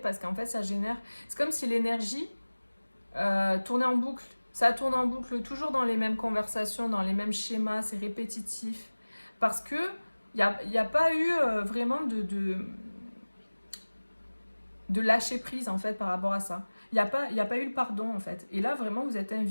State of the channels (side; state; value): both; inverted; correlation -1.00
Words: qu'en fait, ça génère... C'est comme si l'énergie tournait en boucle. Ça tourne en boucle, toujours dans les mêmes conversations, dans les mêmes schémas, c'est répétitif. Parce que il n'y a pas eu vraiment de lâcher prise, en fait, par rapport à ça. il y a pas eu le pardon en fait. Et là, vraiment, vous êtes